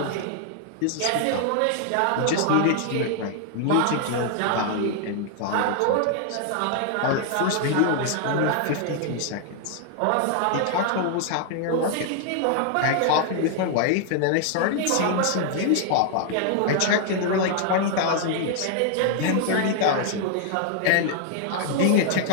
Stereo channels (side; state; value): both; different; correlation 0.00